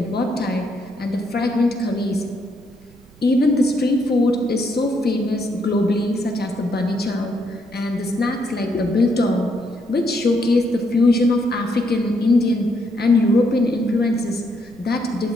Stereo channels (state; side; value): noise; right; rumble, 28 dB below the sound